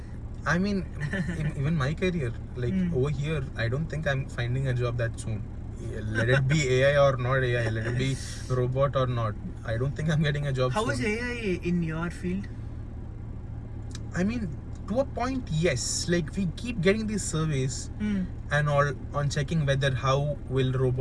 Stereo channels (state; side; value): identical; both; correlation 1.00